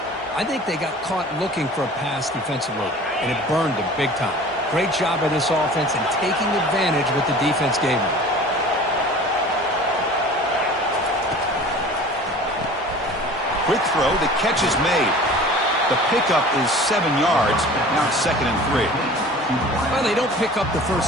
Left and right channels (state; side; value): normal; both; correlation 0.43